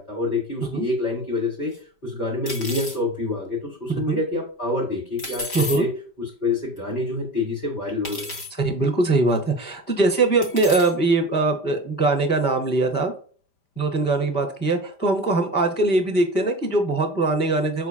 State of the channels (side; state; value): right; late; 5.1 ms